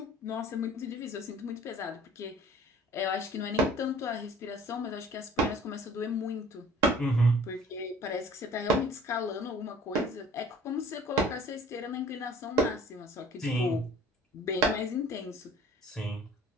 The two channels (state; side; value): normal; both; correlation 0.50